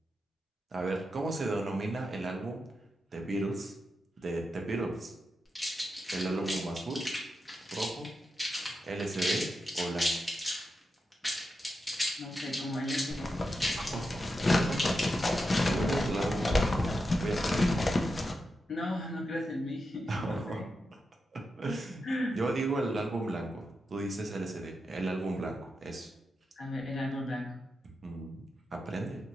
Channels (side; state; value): both; normal; correlation 0.88